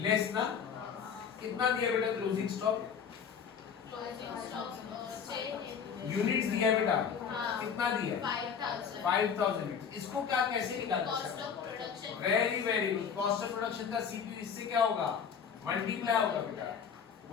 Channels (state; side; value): quieter; right; 7.1 dB